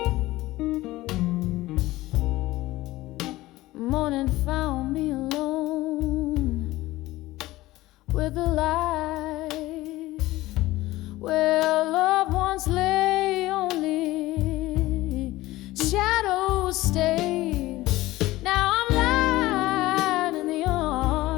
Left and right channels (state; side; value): quieter; right; 17.8 dB